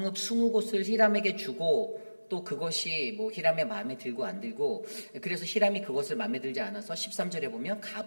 20곳을 히람에게 주고 또 그것이 뭐 히람의 마음에 들고 안 들고, 그래서 히람이 그것을 마음에 들지 않아서 13절에 보면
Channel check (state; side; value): inverted; both; correlation -1.00